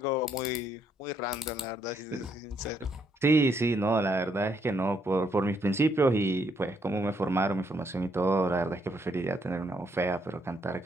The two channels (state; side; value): normal; both; correlation 0.73